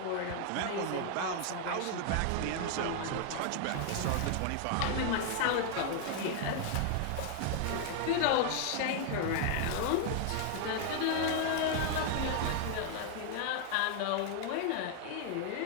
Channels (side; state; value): both; different; correlation 0.00